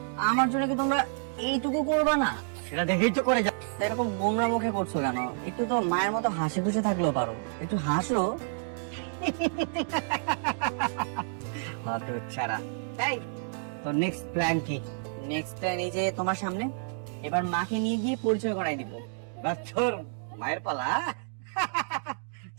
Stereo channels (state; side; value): silent; left; digital silence